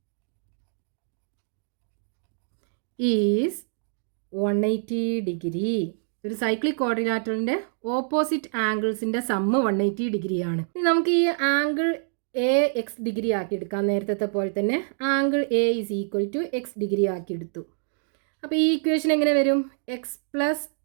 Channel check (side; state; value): left; silent; digital silence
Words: is 180 degree. ഒരു സൈക്ലിക് ക്വാഡ്രിലാറ്ററലിൻ്റെ ഓപ്പോസിറ്റ് ആംഗിൾസിൻ്റെ സമ്മ് 180 ഡിഗ്രിയാണ്. ഇനി നമുക്ക് ഈ ആംഗിൾ എ എക്സ് ഡിഗ്രി ആക്കി എടുക്കാം. നേരത്തെ പോലെ തന്നെ angle A is equal to X degree ആക്കി എടുത്തു. അപ്പോൾ ഈ ഇക്വേഷൻ എങ്ങനെ വരും? X plus